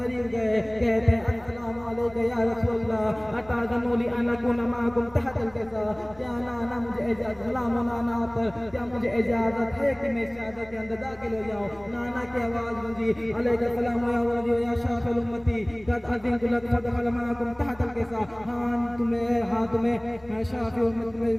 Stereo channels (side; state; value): left; noise; rumble, 25 dB below the sound